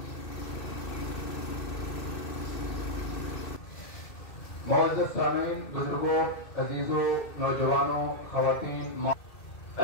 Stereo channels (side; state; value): right; late; 2.6 ms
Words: मौजूद सामीन, बुजुर्गों, अजीजों, नौजवानों, खवातीन,